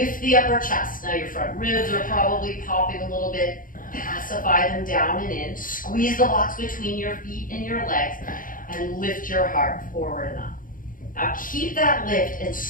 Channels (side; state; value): right; late; 0.40 ms